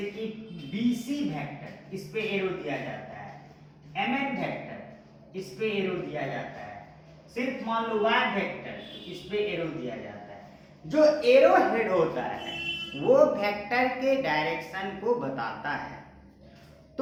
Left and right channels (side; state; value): both; identical; correlation 1.00